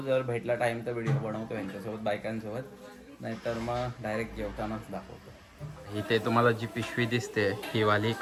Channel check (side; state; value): both; identical; correlation 1.00